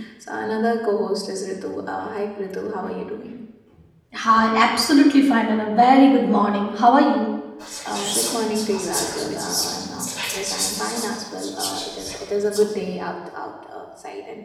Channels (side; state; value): both; identical; correlation 1.00